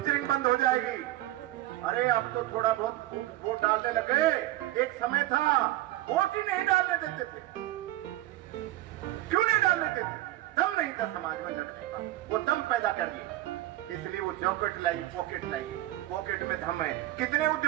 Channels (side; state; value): left; quieter; 15.7 dB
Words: बंद हो जाएगी। अरे अब तो थोड़ा बहुत वोट डालने लगे, एक समय था वोट ही नहीं डालने देते थे। क्यों नहीं डालने देते? दम नहीं था समाज में लड़ने का, वो दम पैदा करिए, इसलिए वो जॉकेट लाइए, पॉकेट लाइए, पॉकेट में दम है। कितने